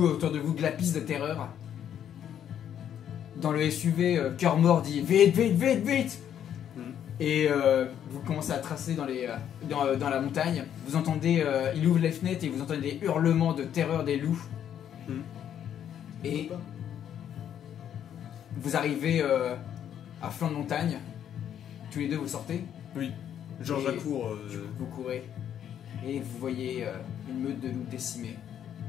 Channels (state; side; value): quieter; right; 9.7 dB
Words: autour de vous glapissent de terreur. Dans le SUV, Cœur Mort dit vite, vite, vite, vite. Et vous commencez à tracer dans la montagne. Vous entendez, il ouvre les fenêtres et vous entendez des hurlements de terreur des loups. Et vous arrivez à flanc de montagne. Tous les deux, vous sortez. Oui. Georges Et- Lacour. Vous courez et vous voyez une meute de loups décimés